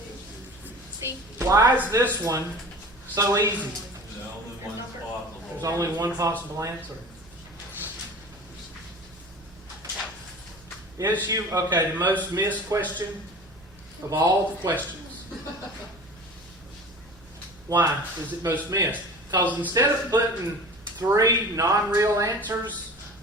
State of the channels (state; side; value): normal; both; correlation 0.39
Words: C. Why is this one so easy? The only one's possible. There's only one possible answer. Is you okay? The most missed question of all the questions. Why is it most missed? Because instead of putting 3 non-real answers